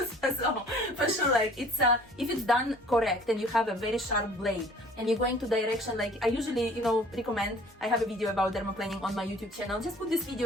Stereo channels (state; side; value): normal; both; correlation 0.52